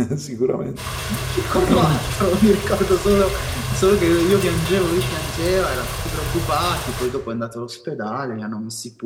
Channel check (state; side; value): identical; both; correlation 1.00